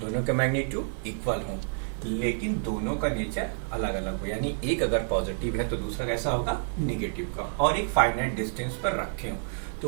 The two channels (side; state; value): left; silent; digital silence